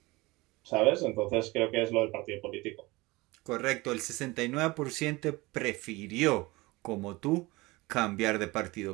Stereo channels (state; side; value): quieter; left; 22.1 dB